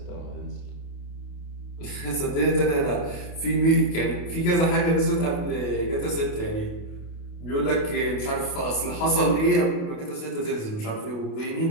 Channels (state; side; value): late; right; 28 ms